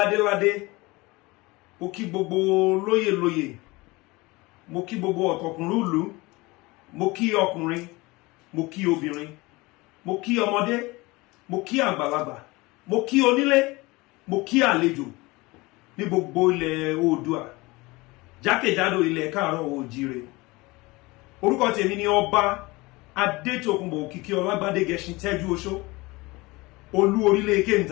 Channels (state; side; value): quieter; right; 22.8 dB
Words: mo kí gbogbo lóyè, mo kí gbogbo ọ̀tọ̀kùnrúlù, mo kí ọkùnrin, mo kí obìnrin, mo kí ọmọdé, mo kí àgbàlagbà, mo kí onílé, mo kí àlejò ní gbogbo ilẹ̀ Oòduà, jákèjádò ilẹ̀ káàárọ̀ oòjíire. Orúkọ tèmi ni Ọba Adétòkunbọ̀ Òkìkíọlá Gbádégẹṣin Tẹ́júoṣó, olú orílẹ̀